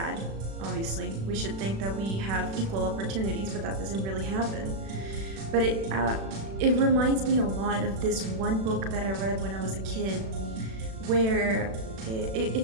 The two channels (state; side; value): late; left; 36 ms